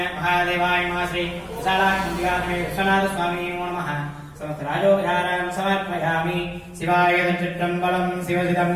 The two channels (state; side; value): identical; both; correlation 1.00